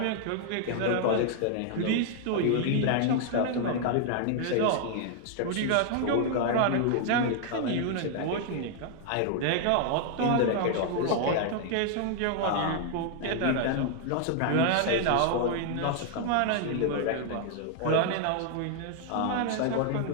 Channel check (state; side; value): different; both; correlation 0.00